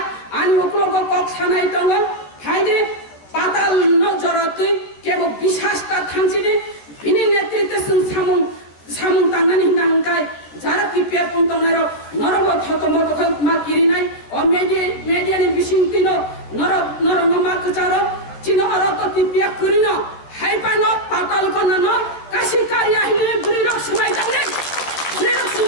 আনি উপলো কক ছানাই তঙ্গ ফাইদে পাতাল নজরতে কেবল বিশ্বাসটা থামছিনি বিনি নেতৃত্বে সামুং তাংনানি নাংকাই যারা কিপিয়া পন্তনার নরব থতম তখন মা কিরি নাই ও মেডিয়ানি বিসিংতিনো নরঙ্গ মা কচার চিনো অরত কিপিয়া করিন হাইপানো পাতাল কনান কাশি কারিয়া হিনে বুড়িরক সবাই তাংনে বুড়িরক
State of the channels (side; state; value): right; late; 13 ms